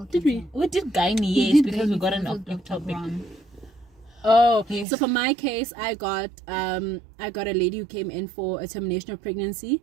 did we did gynae, yes, because we got an topic. Oh, yes. So for my case, I got a lady who came in for a termination of pregnancy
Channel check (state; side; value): drops out; left; at 4.9 s